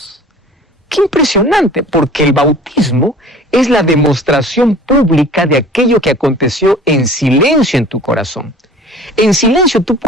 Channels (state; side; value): normal; both; correlation 0.45